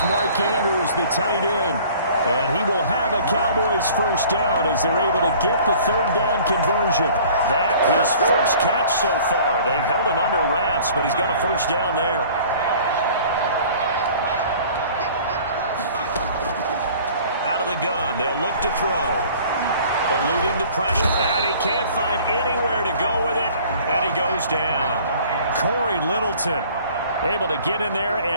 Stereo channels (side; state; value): both; inverted; correlation -0.50